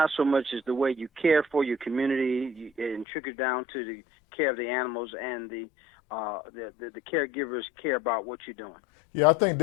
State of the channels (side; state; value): right; drops out; at 3.1 s